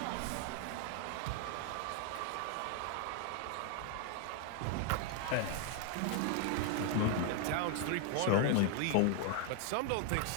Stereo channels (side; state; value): both; different; correlation 0.00